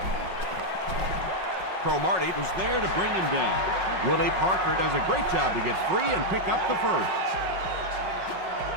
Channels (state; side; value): late; left; 5.4 ms